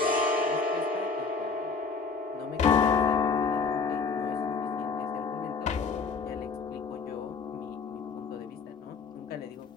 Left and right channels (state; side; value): quieter; right; 4.9 dB